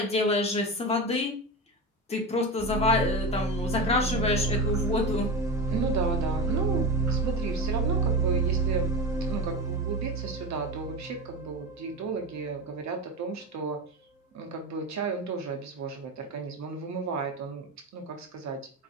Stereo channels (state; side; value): normal; both; correlation 0.23